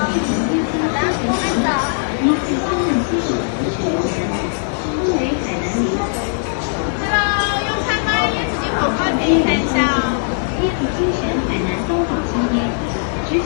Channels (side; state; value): right; silent; digital silence